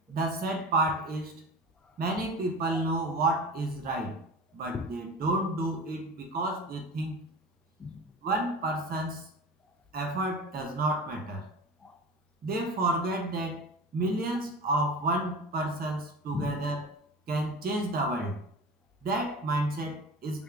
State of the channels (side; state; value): both; normal; correlation 0.34